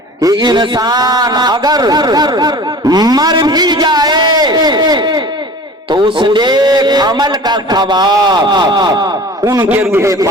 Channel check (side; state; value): both; normal; correlation 0.41